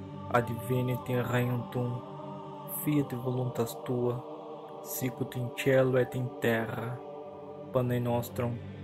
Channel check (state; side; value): identical; both; correlation 1.00